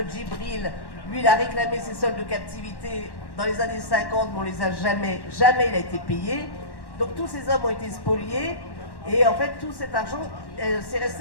Djibril, lui, il a réclamé ses soldes de captivité dans les années 50, mais on les a jamais il a été payé. Donc tous ces hommes ont été spoliés. Et en fait, tout cet argent, c'est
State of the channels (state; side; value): late; right; 1.1 ms